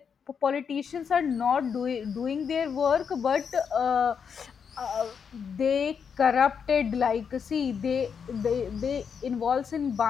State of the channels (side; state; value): right; quieter; 6.8 dB